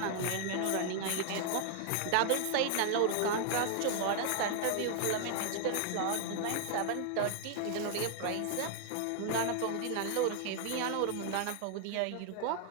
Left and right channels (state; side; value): different; both; correlation 0.00